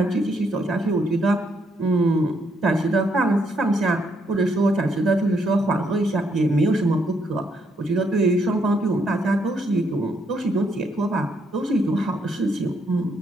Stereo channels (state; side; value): normal; both; correlation 0.74